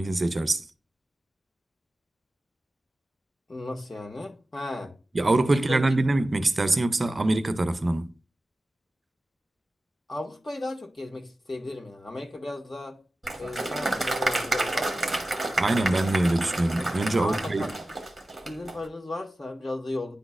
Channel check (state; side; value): normal; both; correlation 0.95